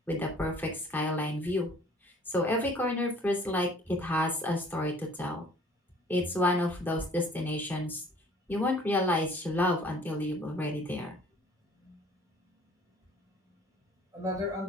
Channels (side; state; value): both; normal; correlation 0.54